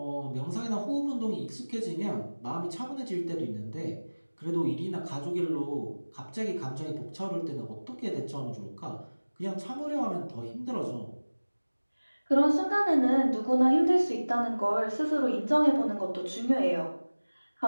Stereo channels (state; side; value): inverted; both; correlation -1.00